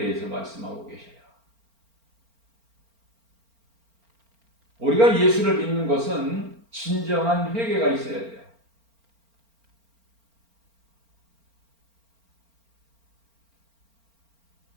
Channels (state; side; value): late; left; 4.4 ms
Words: 말씀하고 계셔요. 우리가 예수를 믿는 것은 진정한 회개가 있어야 돼요.